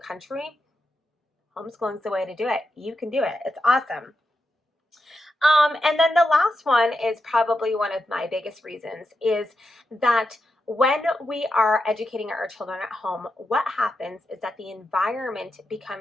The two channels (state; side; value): normal; both; correlation 0.87